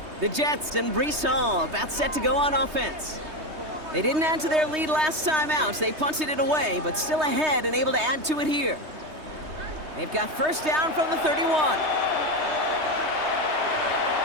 The Jets and Breece Hall about set to go on offense. They didn't add to their lead last time out. They punted it away, but still ahead and able to add to it here. They've got first down from the 31.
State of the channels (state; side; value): late; left; 3.2 ms